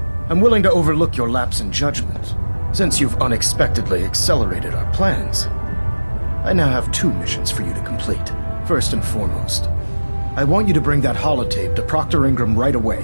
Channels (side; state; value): both; inverted; correlation -1.00